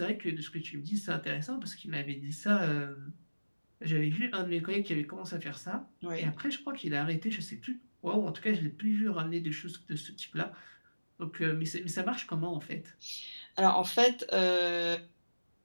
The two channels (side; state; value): both; inverted; correlation -1.00